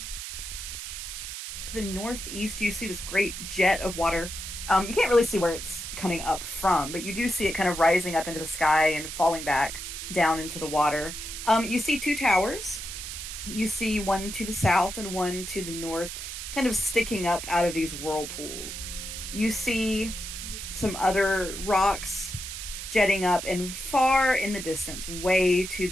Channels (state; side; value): noise; right; hiss, 8 dB below the sound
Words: the northeast, you see this great jet of water. You can't really see where it's coming up from, but you do see it kind of rising up into the sky and falling back down into the water. You see two towers. You see one to the south and one to the north, kind of sticking up out of these whirlpools. you see some other rocks jetting up, and far in the distance, way to